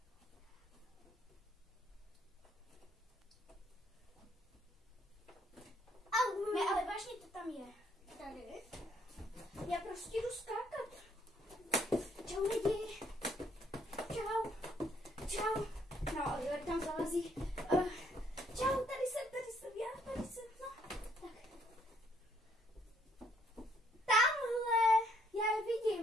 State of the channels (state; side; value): normal; both; correlation 0.68